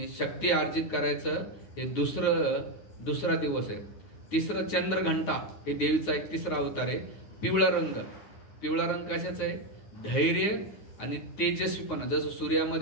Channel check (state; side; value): late; right; 9.4 ms